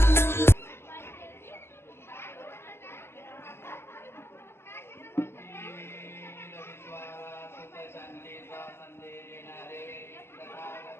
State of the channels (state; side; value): late; right; 0.12 ms